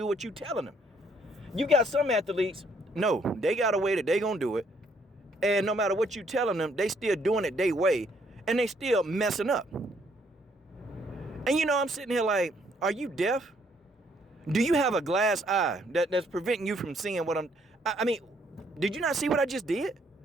what you're telling them. You got some athletes, no, they got a way that they gonna do it. And no matter what you telling them, they still doing it their way. And they still messing up. And you know, I'm sitting here like, are you deaf? Do you have a glass eye that's preventing you from seeing what I mean, did you not see what I just did?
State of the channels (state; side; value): normal; both; correlation 0.68